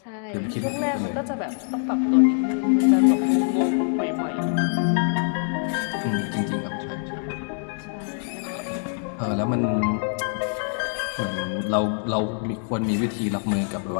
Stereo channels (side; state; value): right; silent; 57 dB below the other